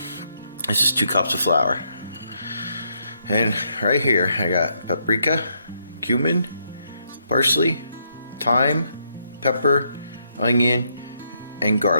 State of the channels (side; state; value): both; inverted; correlation -0.76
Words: This is 2 cups of flour. And right here I got paprika, cumin, parsley, thyme, pepper, onion, and